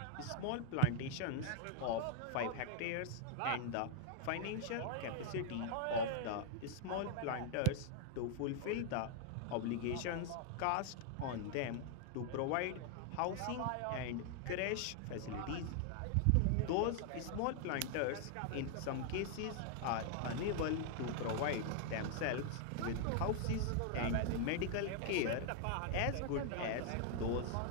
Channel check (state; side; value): different; both; correlation 0.00